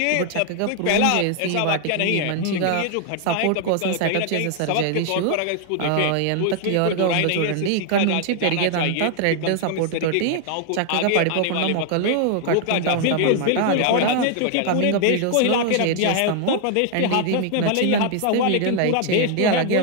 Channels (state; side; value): different; both; correlation 0.00